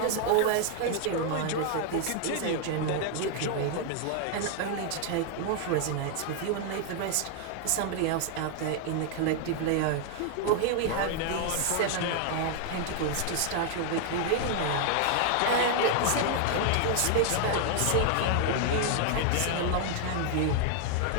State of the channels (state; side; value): different; both; correlation 0.00